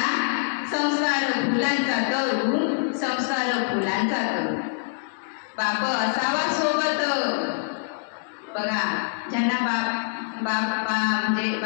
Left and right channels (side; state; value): right; silent; digital silence